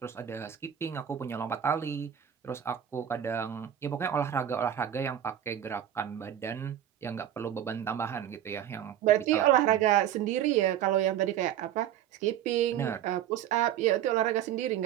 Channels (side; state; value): left; quieter; 10.6 dB